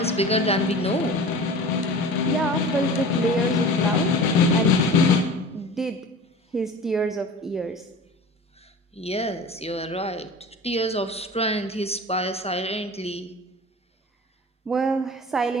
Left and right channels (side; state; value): both; normal; correlation 0.38